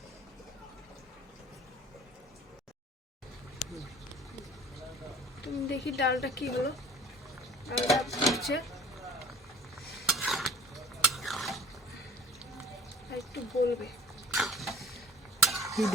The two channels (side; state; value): both; normal; correlation 0.47